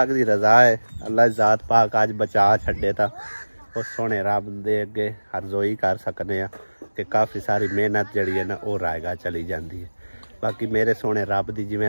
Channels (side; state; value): both; inverted; correlation -1.00